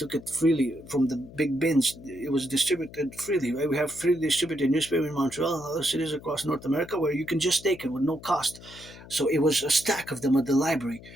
it freely from the big bins. It was distributed freely. Right? We have freely distributed newspaper in Montreal and other cities across North America where you can just take it with no cost. So it was a stack of them at the library.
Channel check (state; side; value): noise; left; hum, 18 dB below the sound